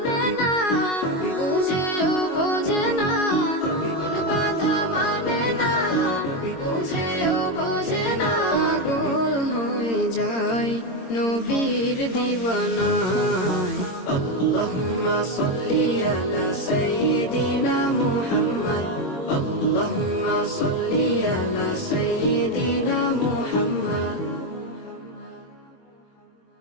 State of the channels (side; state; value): right; late; 22 ms